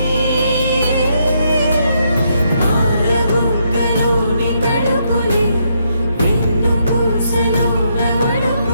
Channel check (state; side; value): inverted; both; correlation -0.76